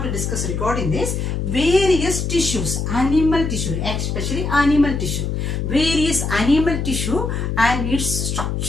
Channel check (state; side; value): noise; left; hum, 1 dB below the sound